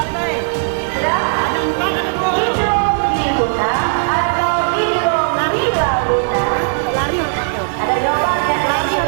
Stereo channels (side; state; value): left; silent; digital silence